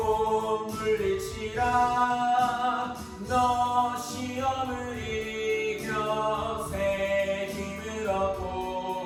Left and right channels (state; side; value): identical; both; correlation 1.00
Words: 물리치라. 너 시험을 이겨 새 힘을